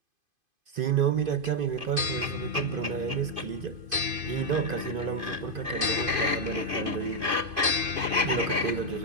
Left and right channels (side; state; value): left; late; 2.5 ms